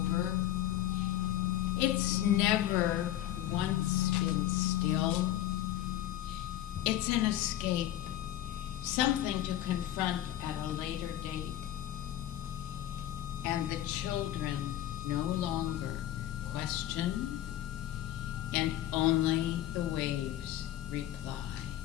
It's never once been still. It's an escape, something to confront at a later date. And the children no longer question, and only the waves reply.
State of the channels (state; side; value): quieter; right; 12.8 dB